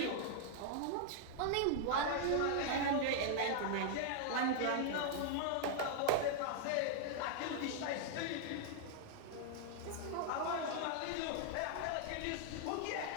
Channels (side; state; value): both; different; correlation 0.00